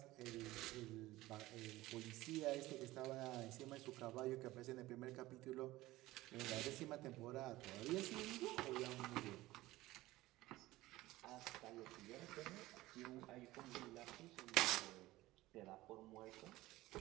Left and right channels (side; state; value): left; quieter; 17.8 dB